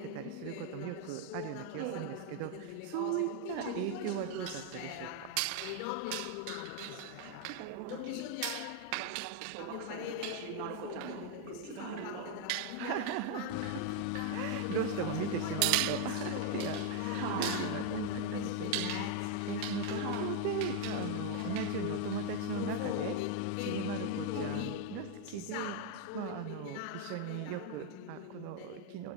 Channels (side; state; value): both; different; correlation 0.01